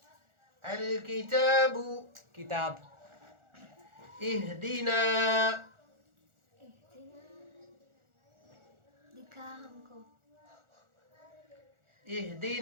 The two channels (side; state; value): left; late; 1.4 ms